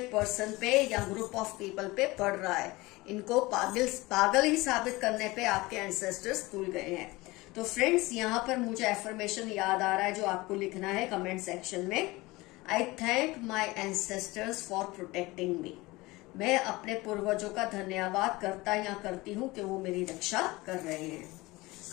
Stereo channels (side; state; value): right; quieter; 21.4 dB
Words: पर्सन पे या ग्रुप ऑफ पीपल पे पड़ रहा है। इनको पागल ही साबित करने पे आपके एंसेस्टर्स तुल गए हैं। तो फ्रेंड्स, यहाँ पर मुझे एफर्मेशन याद आ रहा है जो आपको लिखना है कमेंट सेक्शन में। आई thank my ancestors for protecting मी। मैं अपने पूर्वजों का धन्यवाद करता या करती हूँ कि वो मेरी रक्षा कर रहे हैं।